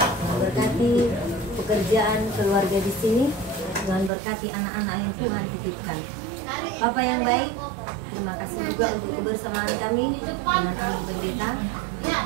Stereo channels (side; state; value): left; drops out; at 4.1 s